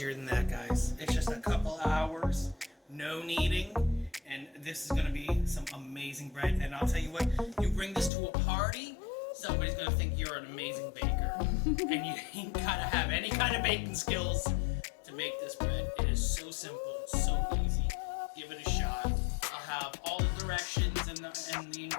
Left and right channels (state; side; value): drops out; right; at 8.1 s